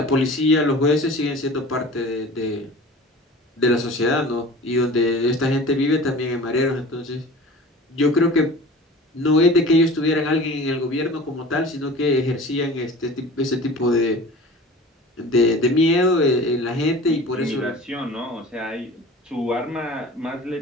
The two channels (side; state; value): both; normal; correlation 0.40